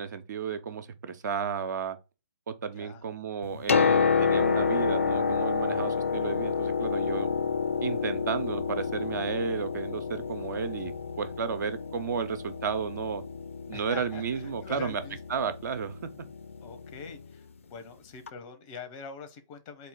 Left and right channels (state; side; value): inverted; both; correlation -0.55